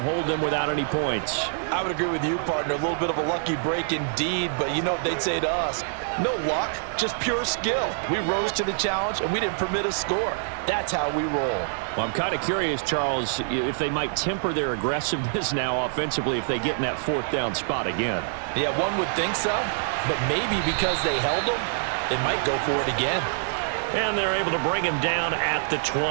them without any points. I would agree with you, partner. A little bit of a lucky break indeed, but you know what they'd say to us? No luck, just pure skill. We rose to the challenge, and we didn't permit a score. That's how we roll. Well, I'm kind of curious, Charles, if they might temper their aggressiveness now offensively if they get in that 4th down spot again. Yeah, one would think so, but maybe because they held them, they might go for it again. And they're able to bring him down at the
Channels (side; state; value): left; silent; 61 dB below the other